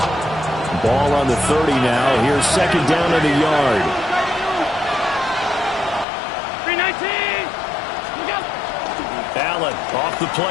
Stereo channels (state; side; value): drops out; right; at 6.1 s